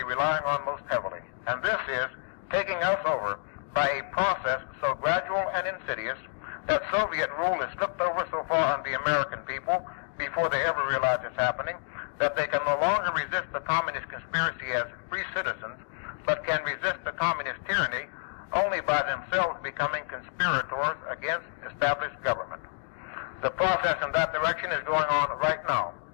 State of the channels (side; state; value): right; silent; digital silence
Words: relying on most heavily. And this is taking us over by a process so gradual and insidious that Soviet rule is slipped over so far on the American people before they ever realize it's happening, that they can no longer resist the communist conspiracy as free citizens, but can resist the communist tyranny only by themselves becoming conspirators against established government. The process in that direction is going on right now,